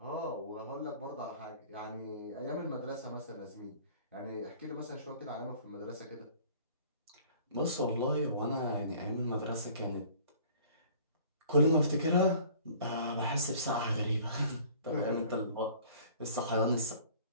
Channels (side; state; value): both; inverted; correlation -0.50